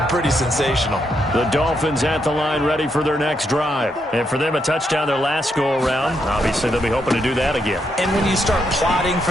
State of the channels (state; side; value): normal; both; correlation 0.79